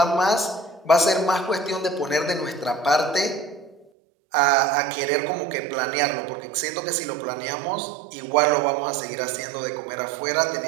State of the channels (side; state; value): left; drops out; at 3.9 s